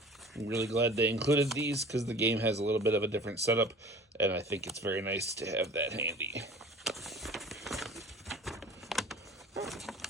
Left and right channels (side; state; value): both; normal; correlation 0.44